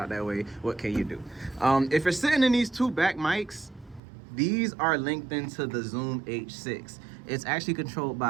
that way. What can you do? If you're sitting in these two back mics, these are linked into the Zoom H6. It's actually controlled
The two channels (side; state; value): left; drops out; at 4.0 s